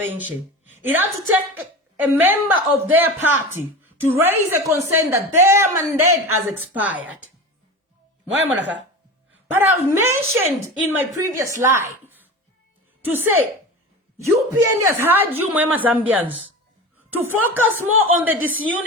It had to take a member of their party to raise a concern that their mandate has expired. But I've mentioned in my previous live to say, UPND has had you, Mwema Zambians, to focus more on the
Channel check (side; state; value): both; normal; correlation 0.30